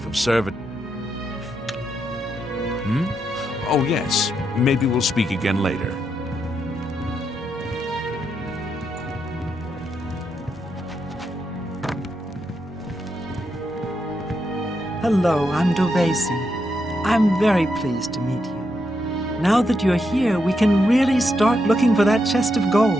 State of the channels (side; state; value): both; normal; correlation 0.82